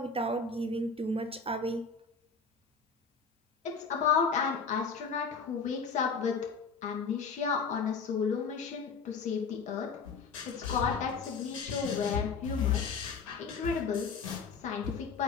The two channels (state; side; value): quieter; right; 5.1 dB